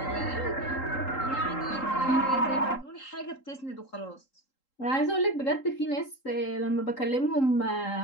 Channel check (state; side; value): late; right; 3.8 ms